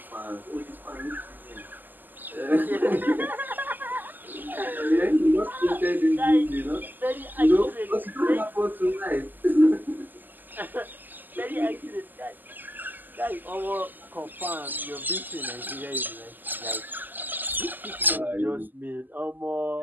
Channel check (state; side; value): late; left; 0.087 ms